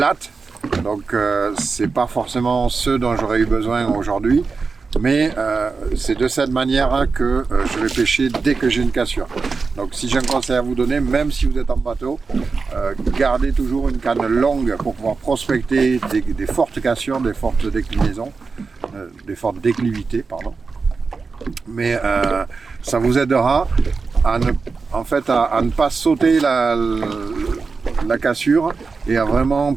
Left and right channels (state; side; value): quieter; left; 4.5 dB